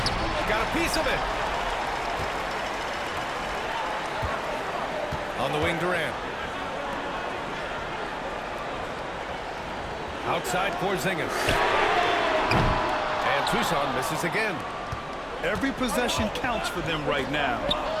Got a piece of it. On the wing, Durant. Outside, Porzingis. And Tucson misses again. Every possession counts for them right now.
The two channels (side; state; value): both; identical; correlation 1.00